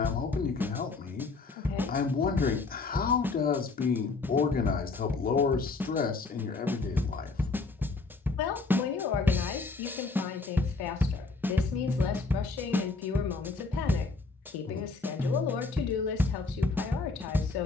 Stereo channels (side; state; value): right; quieter; 4.0 dB